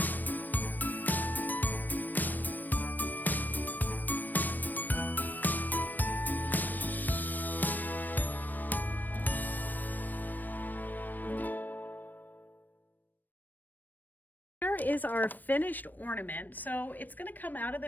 Is our finished ornament. So it's going to come out of the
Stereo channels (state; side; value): late; right; 0.089 ms